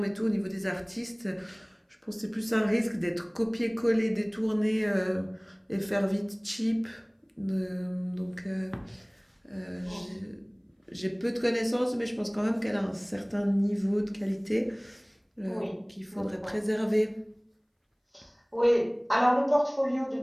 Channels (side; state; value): both; identical; correlation 1.00